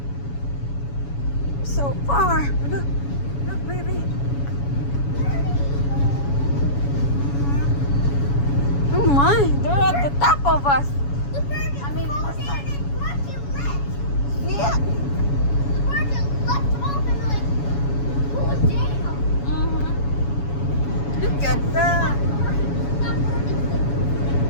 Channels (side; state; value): right; late; 7.1 ms